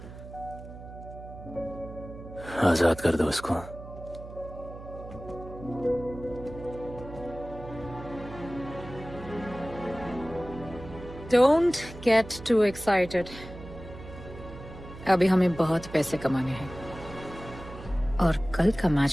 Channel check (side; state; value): right; noise; hum, 14 dB below the sound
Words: आजाद कर दो उसको। Don't get too excited. अभी हमें बहुत पैसे कमाने हैं और कल का